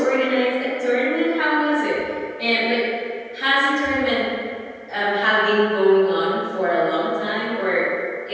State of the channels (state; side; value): identical; both; correlation 1.00